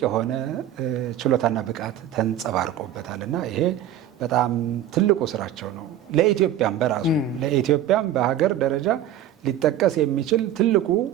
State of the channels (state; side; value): quieter; left; 10.8 dB